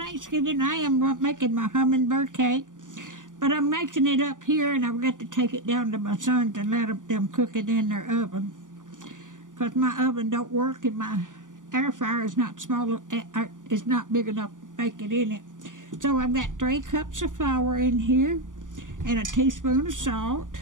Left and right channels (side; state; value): left; late; 0.88 ms